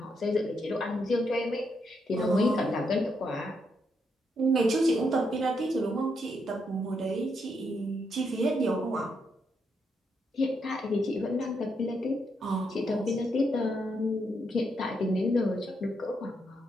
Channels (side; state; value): both; normal; correlation 0.79